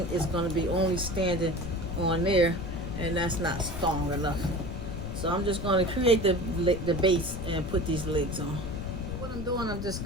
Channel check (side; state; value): left; noise; rumble, 6 dB below the sound